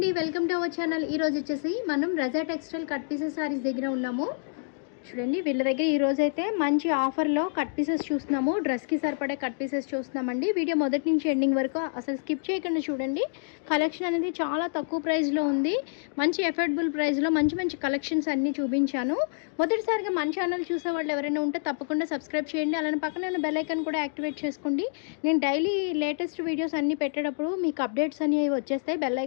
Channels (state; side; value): silent; right; digital silence